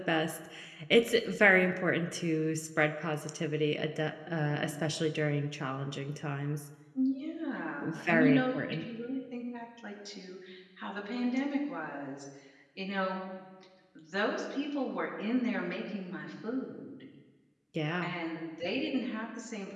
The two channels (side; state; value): both; identical; correlation 1.00